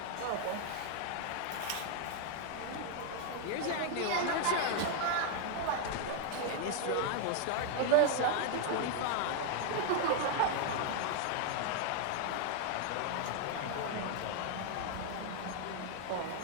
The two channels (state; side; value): different; both; correlation 0.00